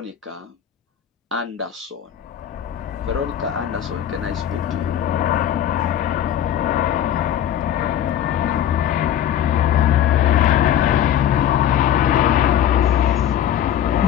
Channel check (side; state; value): right; quieter; 10.6 dB